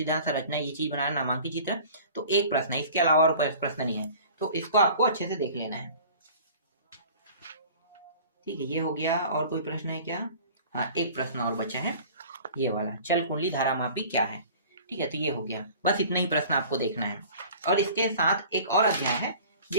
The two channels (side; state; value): both; inverted; correlation -0.45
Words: संरचना, ये चीज बनाना, नामांकित चित्र, तो एक प्रश्न है, इसके अलावा और कोई प्रश्न नहीं है। तो इसको आपको अच्छे से देख लेना है। ठीक है, ये हो गया। और कोई प्रश्न है क्या? हाँ, एक प्रश्न और बचा है, ये वाला, चल कुंडली धारामापी क्या है। ठीक है, तो ये हो गया, बस इतना ही प्रश्न आपको देखना है। और इसके साथ एक और अध्याय है